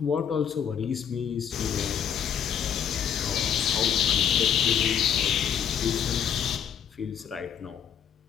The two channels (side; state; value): right; quieter; 8.4 dB